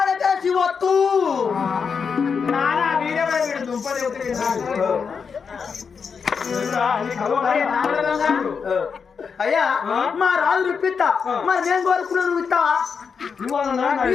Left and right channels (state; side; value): quieter; right; 5.9 dB